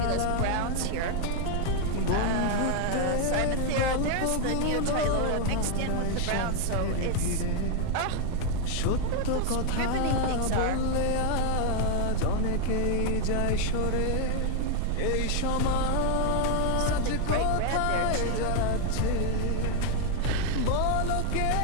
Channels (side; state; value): both; different; correlation 0.00